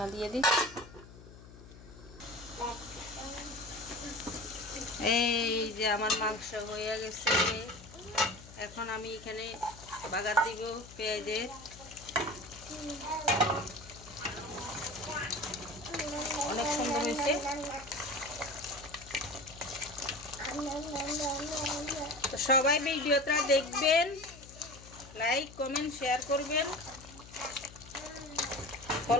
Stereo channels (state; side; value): noise; left; hum, 18 dB below the sound